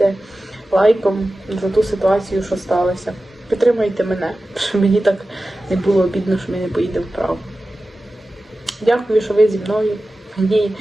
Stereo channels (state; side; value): normal; both; correlation 0.95